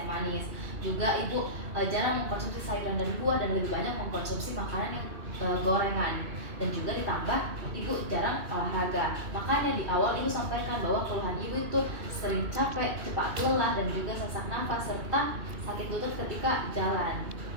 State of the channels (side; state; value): left; late; 2.8 ms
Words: manis. Juga ibu jarang mengkonsumsi sayuran dan buah dan lebih banyak mengkonsumsi makanan yang gorengan. Dan juga ditambah ibu jarang olahraga. Makanya di awal ibu sampaikan bahwa keluhan ibu itu sering capek, cepat lelah dan juga sesak nafas serta sakit lutut ketika jalan.